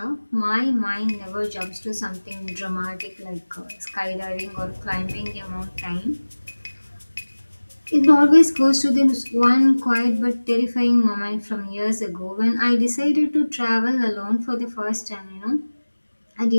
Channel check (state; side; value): inverted; both; correlation -1.00